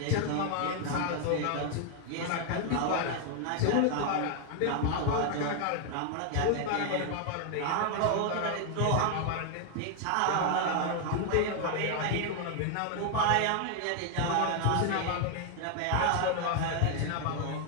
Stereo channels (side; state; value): both; different; correlation 0.00